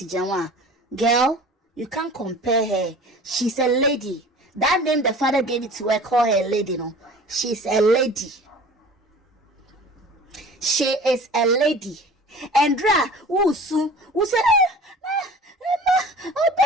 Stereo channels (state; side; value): normal; both; correlation 0.42